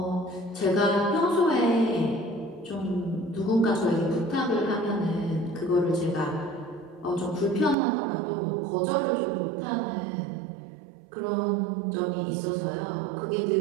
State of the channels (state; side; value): drops out; left; at 7.8 s